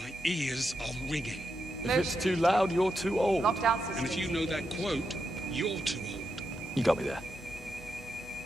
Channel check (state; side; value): normal; both; correlation 0.85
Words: ears are ringing. If it's too loud, you're too old. Lockdown systems And if you know that engaged. quote, you're too old. You got me there.